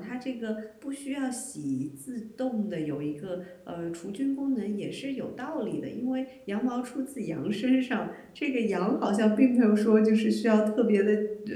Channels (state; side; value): identical; both; correlation 1.00